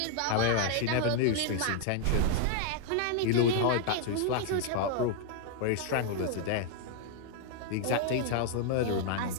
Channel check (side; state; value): both; different; correlation -0.01